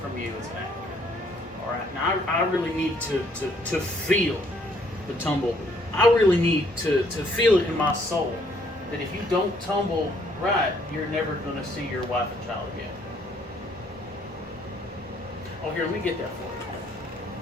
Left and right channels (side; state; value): both; normal; correlation 0.66